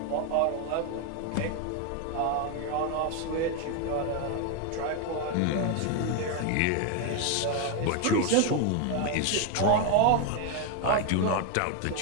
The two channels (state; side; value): different; both; correlation 0.01